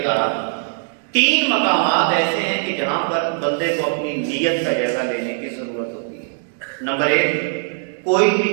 تحت 3 مقامات ایسے ہیں کہ جہاں پر بندے کو اپنی نیت کا جائزہ لینے کی ضرورت ہوتی ہے۔ نمبر 1 کوئی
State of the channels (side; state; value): left; silent; 66 dB below the other